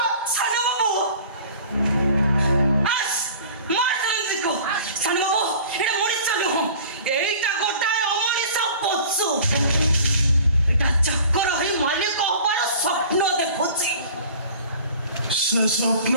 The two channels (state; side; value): inverted; both; correlation -0.45